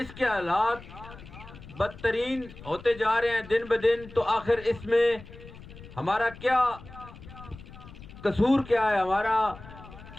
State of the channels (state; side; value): noise; left; rumble, 17 dB below the sound